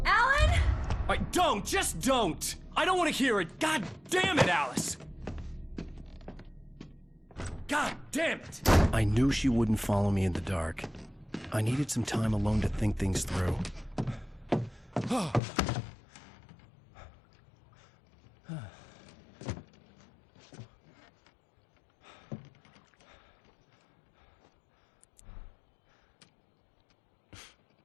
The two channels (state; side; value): drops out; right; at 15.4 s